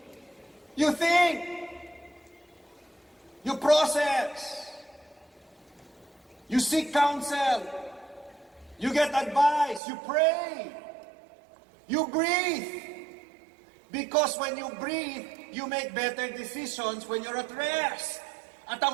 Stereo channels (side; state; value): left; drops out; at 9.8 s